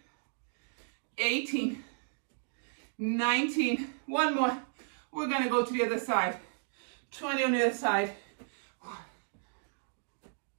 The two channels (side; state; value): left; silent; digital silence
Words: 18, 19, one more. We're gonna go to the other side. 20 on the other side. 1,